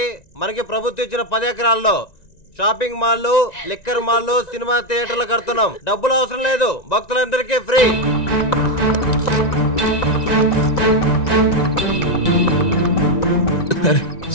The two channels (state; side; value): late; right; 1.9 ms